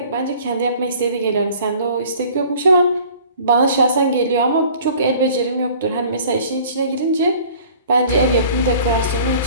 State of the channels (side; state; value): both; inverted; correlation -0.49